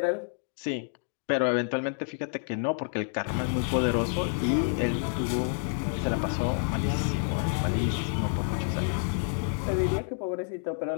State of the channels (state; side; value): silent; right; 59 dB below the other